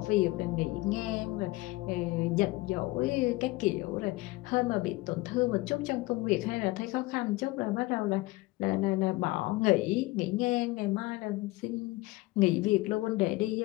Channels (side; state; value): right; quieter; 20.7 dB